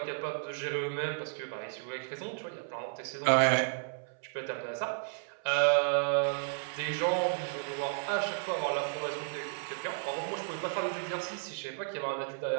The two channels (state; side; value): silent; left; 56 dB below the other